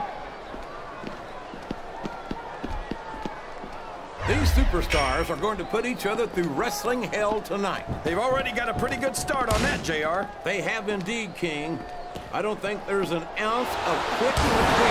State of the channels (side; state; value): both; identical; correlation 1.00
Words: These superstars are going to put each other through wrestling hell tonight. They've already got a pretty good start on that, JR. They have indeed, King. I don't think there's an ounce of quit